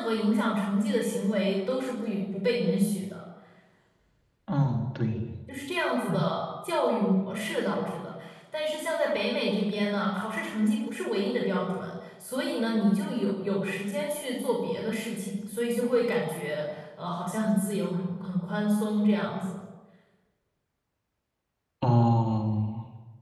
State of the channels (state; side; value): identical; both; correlation 1.00